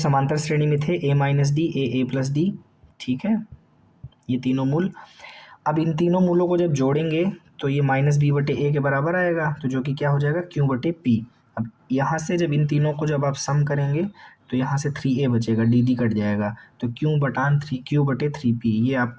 श्रेणी में थे, a minus D, a plus D. ठीक है, ये तीनों मूल। अब इन तीनों मूलों को जब जोड़ेंगे तो ये -b/a के बराबर आएगा, तो जो कि क्या हो जाएगा? Q/p। अब यहाँ से जब इन तीनों को जब आप सम करेंगे तो यहाँ से 3a बचेगा, dd कट जाएगा, तो Q/3p ये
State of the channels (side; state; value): both; identical; correlation 1.00